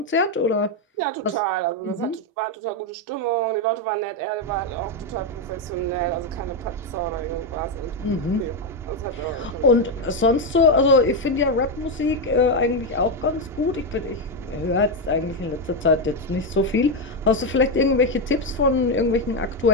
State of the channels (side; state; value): both; normal; correlation 0.05